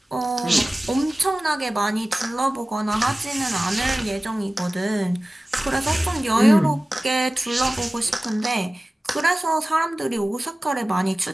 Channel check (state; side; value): normal; both; correlation 0.97